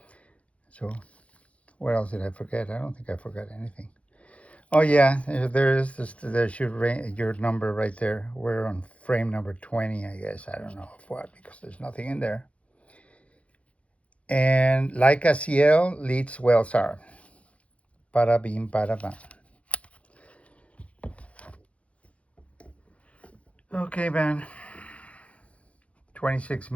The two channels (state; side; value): late; right; 0.063 ms